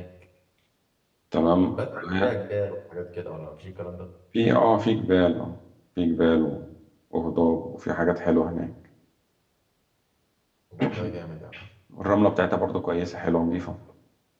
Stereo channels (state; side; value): identical; both; correlation 1.00